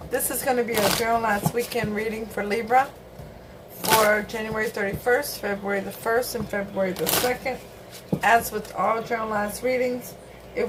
This is going to be a Journal Last Weekend reading for Libra for January 31st, February the 1st, and February the 2nd. As with all Journal Last readings,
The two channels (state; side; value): identical; both; correlation 1.00